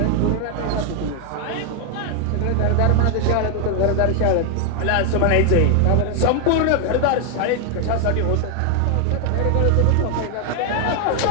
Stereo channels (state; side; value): different; both; correlation 0.00